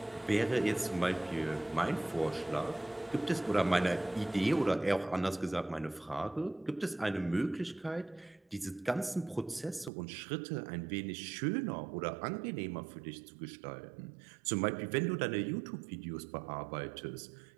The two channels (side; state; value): left; drops out; at 9.9 s